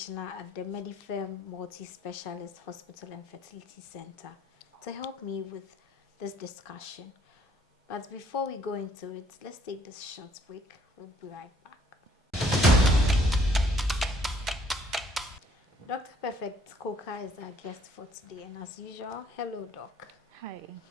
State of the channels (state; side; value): normal; both; correlation 0.63